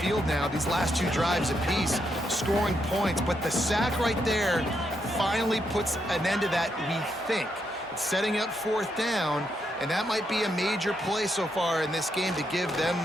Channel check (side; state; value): both; normal; correlation 0.80